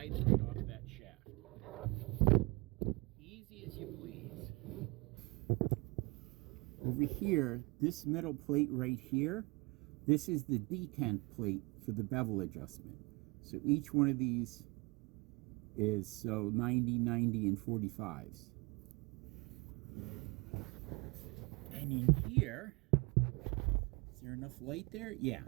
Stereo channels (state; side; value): quieter; left; 26.6 dB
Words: right off that shaft. Easy as you please. Over here, this metal plate right here, this is the detent plate for the bevel adjustment. So each one of these is 90, 90, and 45s. And in here, is there enough light there? Yeah.